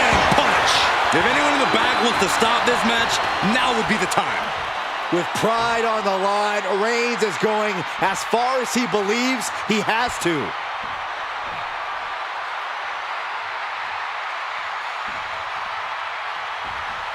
punch. If anyone in the back wants to stop this match, now would be the time. With pride on the line, Reigns is going as far as he believes he has to.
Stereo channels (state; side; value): identical; both; correlation 1.00